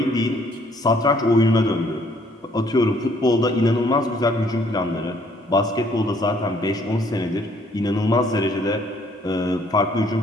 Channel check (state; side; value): normal; both; correlation 0.63